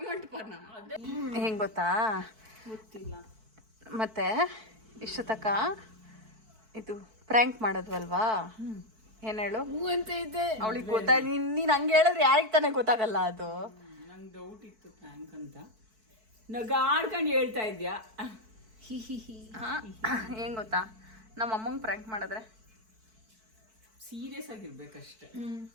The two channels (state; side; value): late; left; 4.6 ms